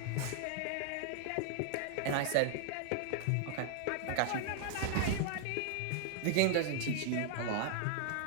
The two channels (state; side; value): different; both; correlation 0.00